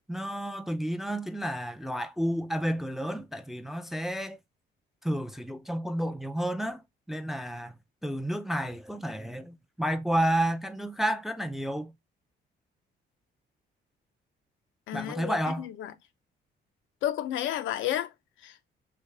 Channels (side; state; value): both; normal; correlation 0.81